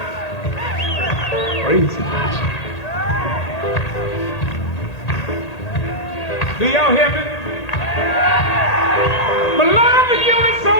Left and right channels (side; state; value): right; late; 1.8 ms